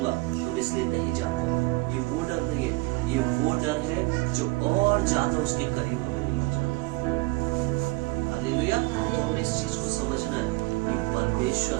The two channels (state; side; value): quieter; left; 23.8 dB